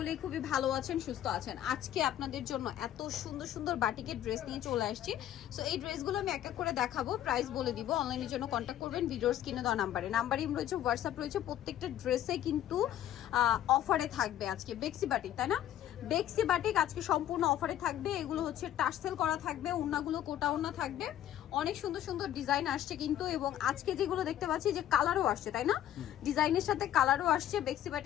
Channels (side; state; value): right; quieter; 11.9 dB